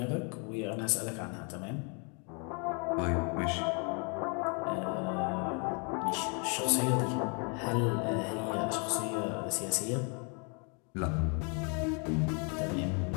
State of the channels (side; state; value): right; quieter; 36.4 dB